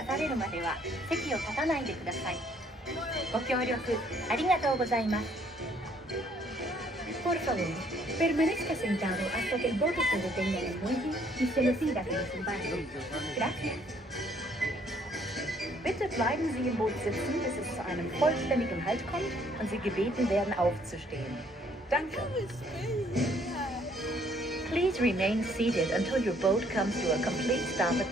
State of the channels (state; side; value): normal; both; correlation 0.64